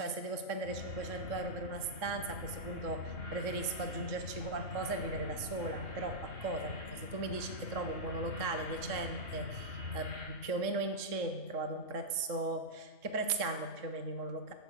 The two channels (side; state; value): left; late; 3.6 ms